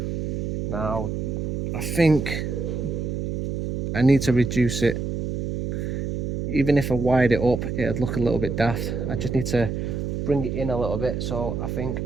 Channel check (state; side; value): noise; right; hum, 2 dB below the sound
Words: Now I think I need to reduce it. Even if I wired it up, it'd look a little bit daft. I just need to bring it in a little bit, so I think